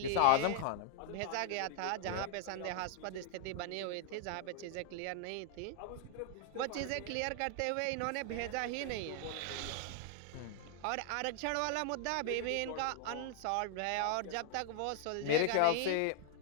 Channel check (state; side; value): different; both; correlation 0.00